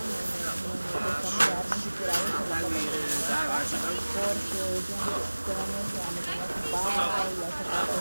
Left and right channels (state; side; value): inverted; both; correlation -1.00